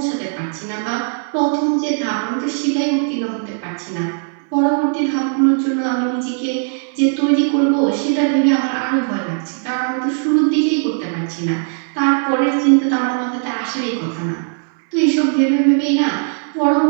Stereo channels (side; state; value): left; silent; digital silence